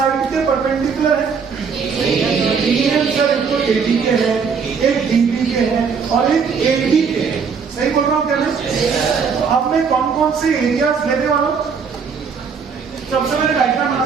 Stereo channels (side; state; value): left; quieter; 5.9 dB